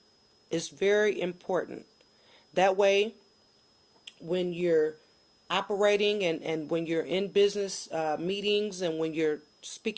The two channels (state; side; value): identical; both; correlation 1.00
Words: It's very important. That way, when you're operating and when you're in business meetings and when you're